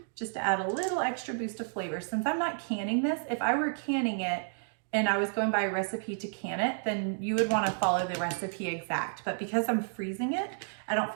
just to add a little extra boost of flavor. Since I'm not canning this, if I were canning it and I was going by a recipe to can it, then you would wanna follow the recipe exact. But because I'm freezing it, I don't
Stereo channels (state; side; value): silent; left; digital silence